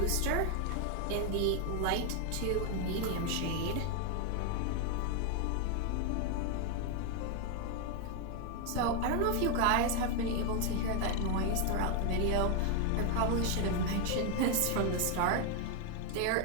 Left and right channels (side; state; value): both; different; correlation 0.01